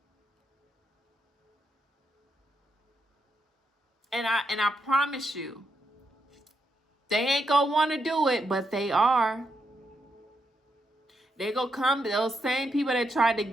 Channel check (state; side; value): normal; both; correlation 0.81